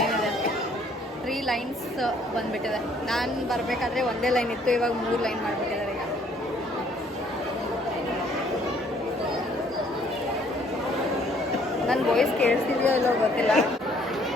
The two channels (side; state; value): both; normal; correlation 0.62